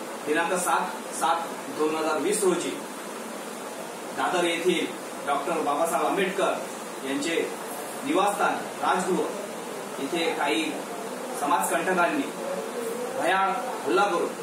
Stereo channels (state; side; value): identical; both; correlation 1.00